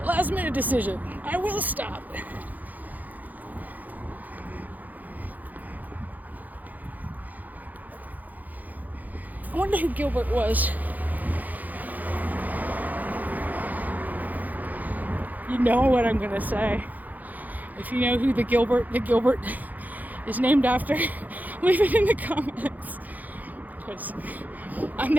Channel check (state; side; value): late; left; 0.081 ms